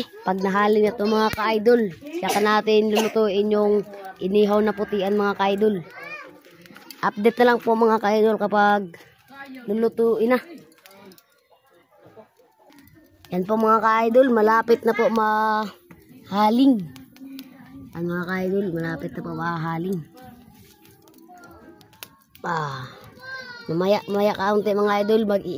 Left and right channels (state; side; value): identical; both; correlation 1.00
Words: Pag nahaling na to mga ka-idol, saka natin lulutuin yung inihaw na putian mga ka-idol. Update na lang po mga ka-idol kapag lulutuin na. Yan po mga ka-idol, malapit na po mahaling. Yan mga ka-idol, malapit na po mahaling. Mamaya kaunti mga idol,